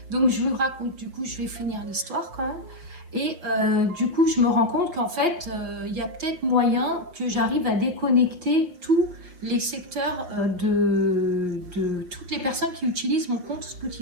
Donc je vous raconte, du coup je vais finir l'histoire quand même. Et du coup je me rends compte qu'en fait il y a peut-être moyen que j'arrive à déconnecter tous les secteurs de toutes les personnes qui utilisent mon compte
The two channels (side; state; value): left; late; 5.6 ms